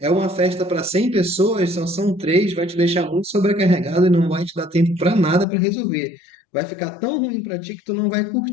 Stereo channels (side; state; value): right; drops out; at 5.5 s